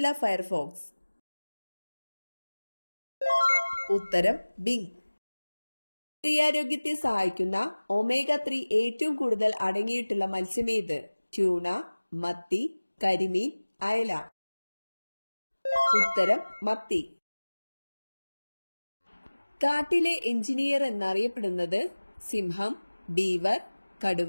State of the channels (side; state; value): both; inverted; correlation -1.00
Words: Firefox. ഉത്തരം ബിങ്. ഹൃദയാരോഗ്യത്തെ സഹായിക്കുന്ന ഒമേഗ-3 ഏറ്റവും കൂടുതൽ അടങ്ങിയിട്ടുള്ള മത്സ്യമേത്? ട്യൂണ, മത്തി, കരിമീൻ, അയല. ഉത്തരം മത്തി. കാട്ടിലെ എഞ്ചിനീയർ എന്നറിയപ്പെടുന്നത്? സിംഹം, ബീവർ,